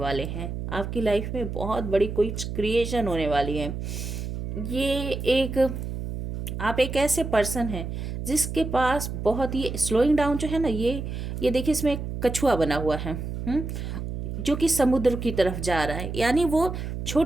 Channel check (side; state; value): right; noise; hum, 5 dB below the sound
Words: हैं। आपकी लाइफ में बहुत बड़ी कोई क्रिएशन होने वाली है। आप एक ऐसे पर्सन हैं जिसके पास बहुत, ये स्लोइंग डाउन जो है ना, ये देखिए इसमें एक कछुआ बना हुआ है जो कि समुद्र की तरफ जा रहा है। यानी वो